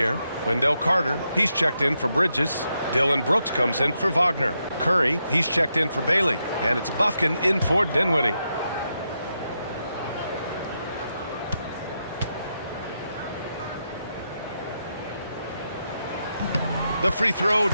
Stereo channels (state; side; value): inverted; both; correlation -0.84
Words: Wendell Carter, he's checked in for Bridges. Dylan Brooks comes in for Wagner. Curry, he's checked in for Bailey. And it's Bufkin in for Dinwiddie. The free throw